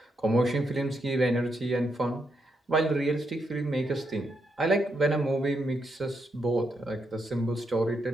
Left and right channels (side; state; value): both; normal; correlation 0.81